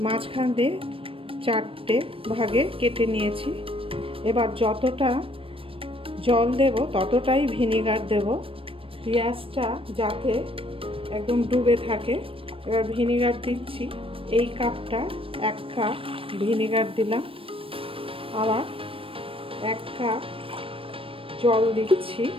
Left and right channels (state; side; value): late; left; 0.26 ms